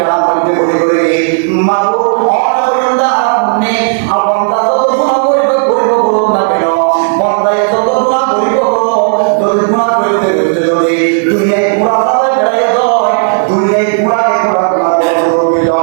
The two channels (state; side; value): silent; left; 69 dB below the other